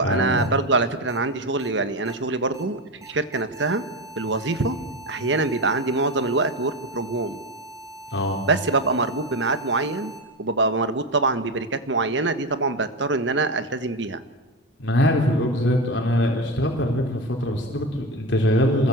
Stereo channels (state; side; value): normal; both; correlation 0.18